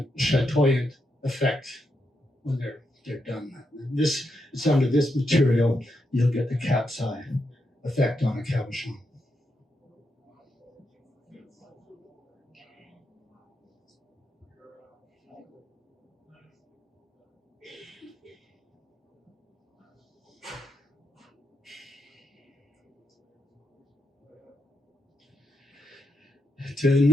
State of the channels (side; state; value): both; normal; correlation 0.83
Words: chatoyant effect when they're done. It's under this material, you'll get the cat's eye effect on a cabochon. To